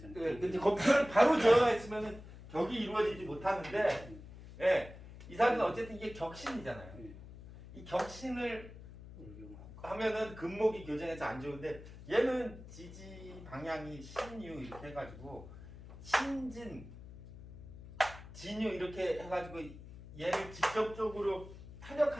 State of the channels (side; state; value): left; noise; hum, 15 dB below the sound